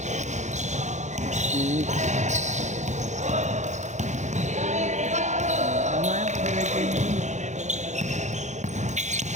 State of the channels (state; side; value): late; left; 0.34 ms